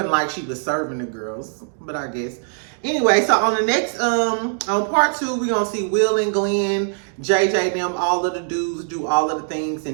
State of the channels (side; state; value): left; silent; digital silence